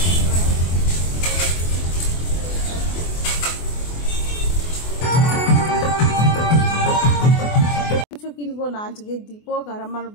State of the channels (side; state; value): right; late; 24 ms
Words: কিছু কিনবো না। আজকে দীপক আর আমার